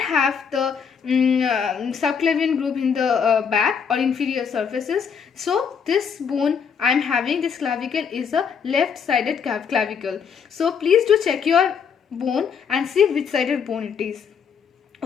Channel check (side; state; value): right; quieter; 6.7 dB